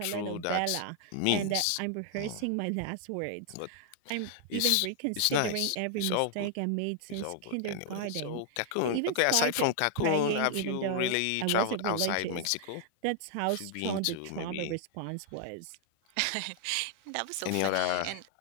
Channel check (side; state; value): both; different; correlation -0.01